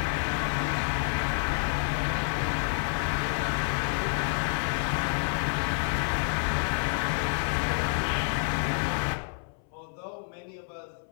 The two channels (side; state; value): right; silent; 59 dB below the other